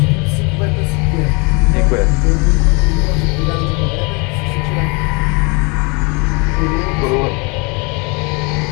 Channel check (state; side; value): quieter; right; 30.2 dB